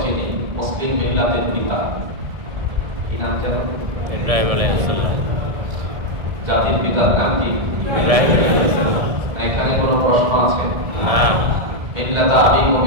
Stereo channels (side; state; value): left; late; 1.6 ms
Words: চিনি মুসলিম মিল্লাতের পিতা, কি নাম যেন? ইব্রাহিম আলাইহিস সালাম। জাতির পিতার নাম কি? ইব্রাহিম আলাইহিস সালাম। এখানে কোনো প্রশ্ন আছে? না। মিল্লাত আবিকুম